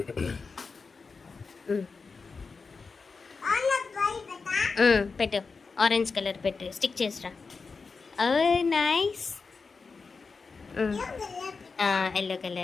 పెట్టు. ఆరెంజ్ కలర్ పెట్టు. స్టిక్ చేసిరా. Nice. Yellow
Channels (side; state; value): right; quieter; 4.6 dB